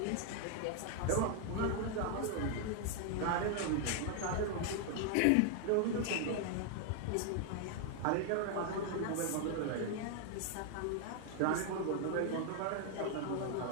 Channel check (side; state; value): both; different; correlation 0.00